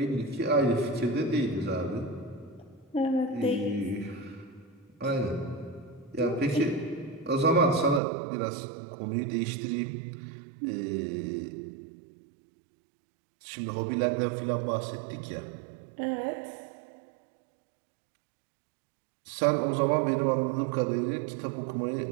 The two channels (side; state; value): left; drops out; at 8.0 s